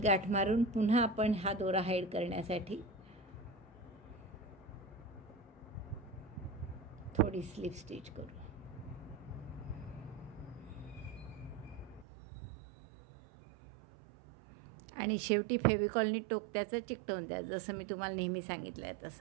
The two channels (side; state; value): left; drops out; at 12.1 s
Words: गाठ मारून पुन्हा आपण हा दोरा हाईड करण्यासाठी थोडी स्लिप स्टिच करू. आणि शेवटी फेविकॉलनी टोक त्याचं चिकटवून द्या, जसं मी तुम्हाला नेहमी सांगितलं आहे